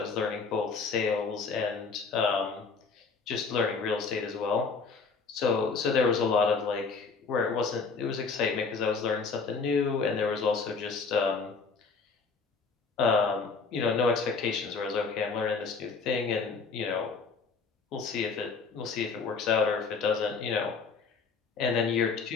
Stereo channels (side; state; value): right; quieter; 4.9 dB